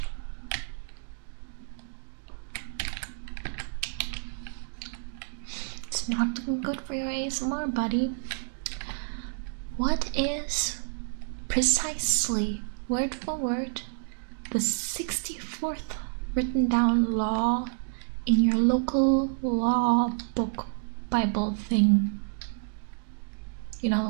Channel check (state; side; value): silent; left; digital silence